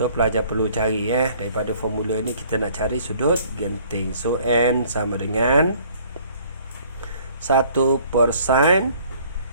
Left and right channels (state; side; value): inverted; both; correlation -0.57